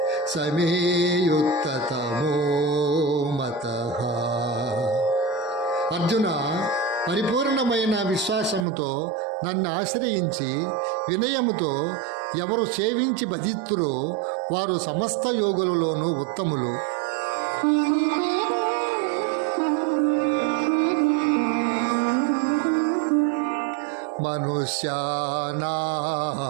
సమే యుక్తతమో మతః. అర్జున, పరిపూర్ణమైన విశ్వాసముతో నన్ను ఆశ్రయించి వినయముతో ఎవరు సేవించి భజిత్తురో వారు సమస్త యోగులలోనూ ఉత్తములు.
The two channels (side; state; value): left; drops out; at 8.7 s